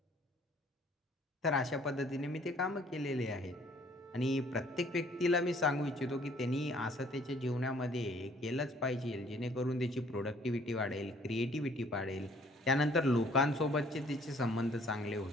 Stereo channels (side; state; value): both; normal; correlation 0.58